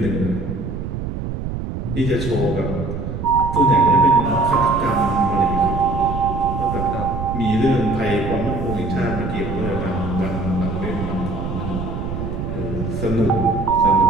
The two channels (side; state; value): right; noise; rumble, 5 dB below the sound